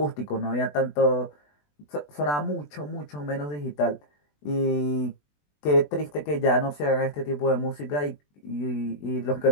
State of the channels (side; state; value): right; late; 20 ms